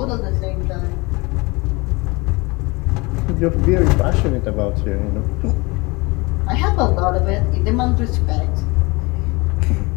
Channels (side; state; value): right; quieter; 25.3 dB